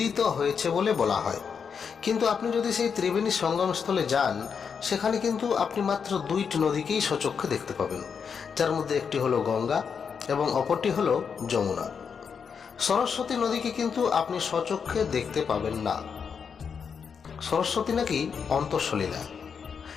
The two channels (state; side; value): quieter; right; 6.4 dB